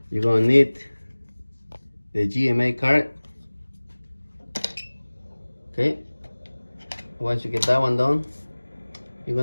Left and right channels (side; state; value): both; inverted; correlation -1.00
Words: you're gonna need the GMA card. Okay, once you get that one done, you're